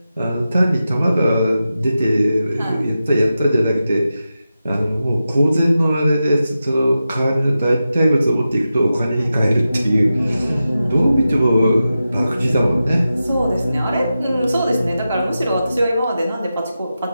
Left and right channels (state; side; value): inverted; both; correlation -0.91